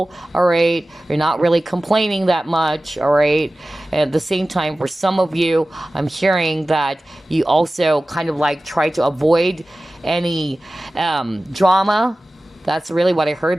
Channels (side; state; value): both; normal; correlation 0.96